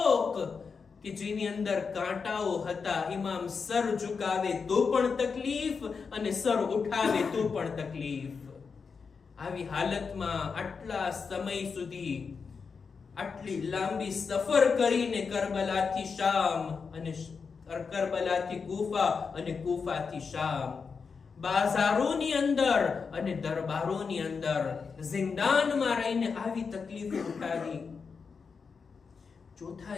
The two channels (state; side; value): quieter; right; 5.4 dB